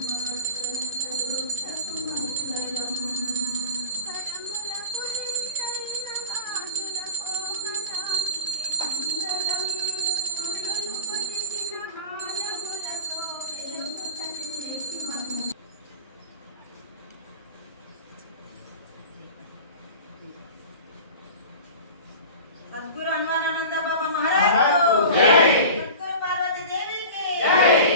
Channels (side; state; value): both; inverted; correlation -0.32